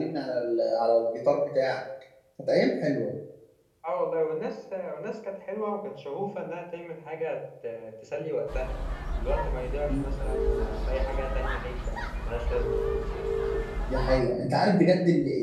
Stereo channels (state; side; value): identical; both; correlation 1.00